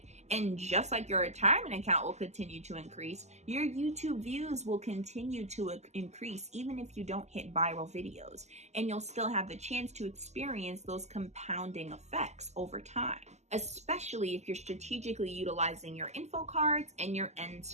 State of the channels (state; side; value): late; left; 0.33 ms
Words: And just like your retirement account will continue to increase, your YouTube views will continue to increase even if you don't hit viral videos. And you'll still have the chance to experience those compounding effects over time, especially if you're strategically utilizing your info cards and your end